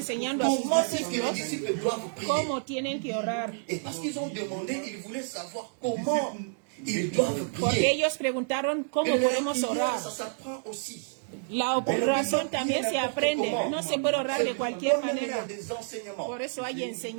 a sus comment est-ce que les discípulos disciples doivent prier. cómo tienen que orar. Et parce qu'ils ont demandé, ils voulaient savoir comment ils doivent Porque prier. ellos preguntaron cómo Et la podemos prière, orar. ça s'apprend aussi. La oración también se aprende. No se puede orar de cualquier Il y a manera. des enseignements. Por eso hay Que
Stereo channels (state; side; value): silent; left; digital silence